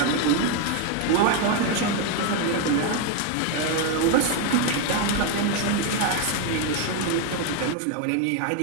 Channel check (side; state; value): both; different; correlation 0.01